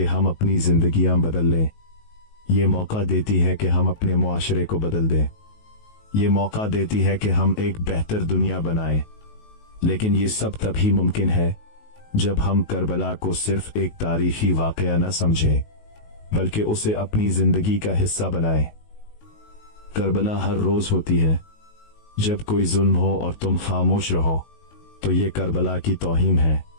हम अपनी जिंदगियां बदल लें। ये मौका देती है कि हम अपने मुआशरे को बदल दें। ये मौका देती है कि हम एक बेहतर दुनिया बनाएं। लेकिन ये सब तभी मुमकिन है जब हम करबला को सिर्फ एक तारीखी वाकया न समझें, बल्कि उसे अपनी जिंदगी का हिस्सा बनाएं। करबला हर रोज होती है। जब कोई जुल्म हो और तुम खामोश रहो तो ये करबला की तौहीन है।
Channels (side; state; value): right; late; 19 ms